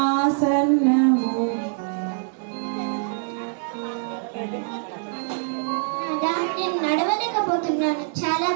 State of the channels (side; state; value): left; silent; digital silence